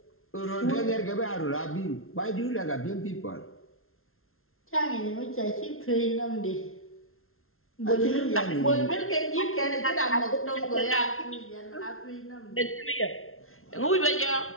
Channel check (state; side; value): late; right; 0.61 ms